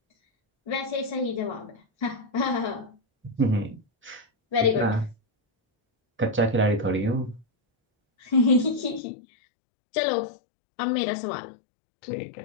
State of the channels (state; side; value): drops out; right; at 9.0 s